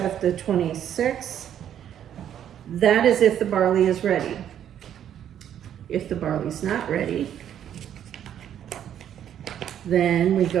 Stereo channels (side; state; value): left; quieter; 10.0 dB